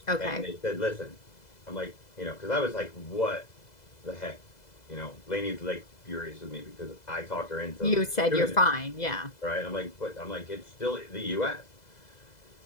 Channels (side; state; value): right; late; 2.0 ms